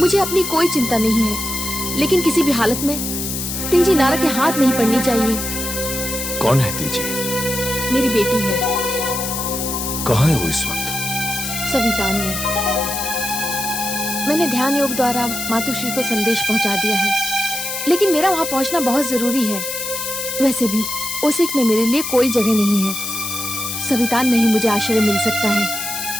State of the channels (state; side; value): noise; left; hiss, 4 dB below the sound